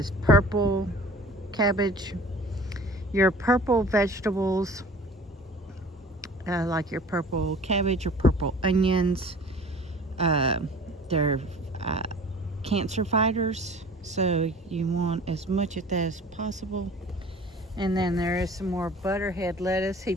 purple cabbage. Your purple vegetables, like your purple cabbage or purple onions, they're cancer fighters, so you want as much of that as possible. And then there is some more butterhead lettuce he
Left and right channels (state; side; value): normal; both; correlation 0.45